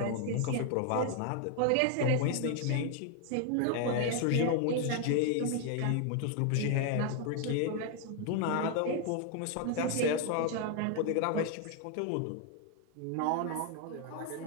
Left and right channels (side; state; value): both; different; correlation 0.00